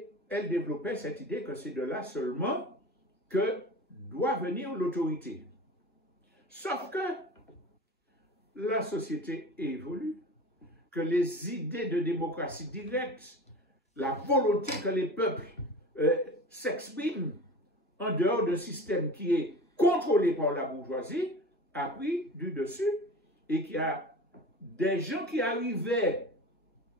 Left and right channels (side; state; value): both; normal; correlation 0.35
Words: elle développait cette idée que c'est de là seulement que doit venir l'autorité. Sauf que la société évolue, que les idées de démocratie directe, la volonté que les peuples s'expriment en dehors d'un système qui est contrôlé par la bourgeoisie, a pris du dessus et qu'il y a des gens qui arrivaient